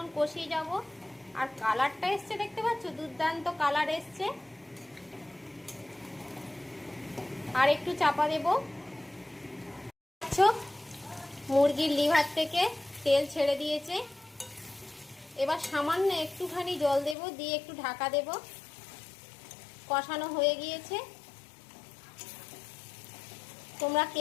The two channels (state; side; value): drops out; right; at 17.2 s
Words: কষিয়ে যাব। আর কালারটা এসছে, দেখতে পাচ্ছ, দুর্দান্ত কালার এসছে। আর একটু চাপা দেব। মুরগির লিভার থেকে তেল ছেড়ে দিয়েছে, এবার সামান্য একটুখানি জল দেব, দিয়ে একটু ঢাকা দেব। কষানো হয়ে গিয়েছে। তোমরা